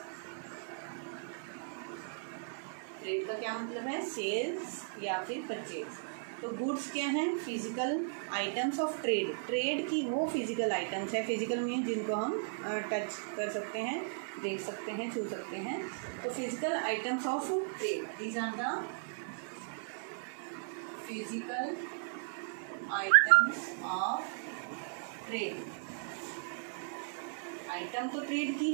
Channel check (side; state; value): left; silent; 54 dB below the other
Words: ट्रेड का क्या मतलब है? सेल्स या फिर परचेज. तो गुड्स क्या हैं? Physical items of trade. Trade की वो फिजिकल आइटम्स हैं. फिजिकल मीन जिनको हम टच कर सकते हैं, देख सकते हैं, छू सकते हैं. तो physical items of trade, these are the physical items of trade. Item तो ट्रेड